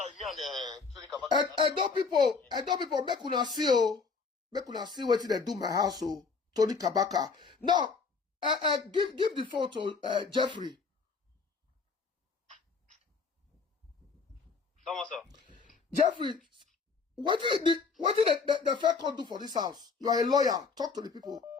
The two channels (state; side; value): quieter; right; 4.9 dB